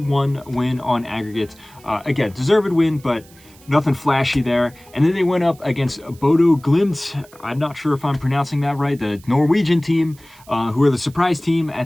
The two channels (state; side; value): noise; right; hiss, 26 dB below the sound